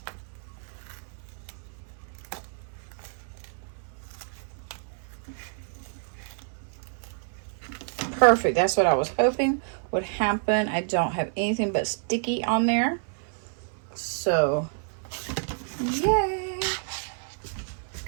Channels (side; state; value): left; silent; 57 dB below the other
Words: Perfect. That's what I was hoping would happen. I don't have anything but sticky on there. So, yay.